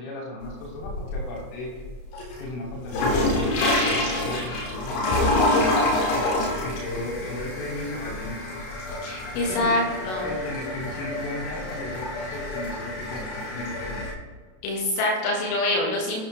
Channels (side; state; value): right; late; 32 ms